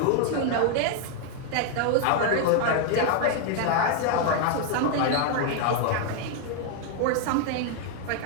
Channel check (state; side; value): different; both; correlation 0.00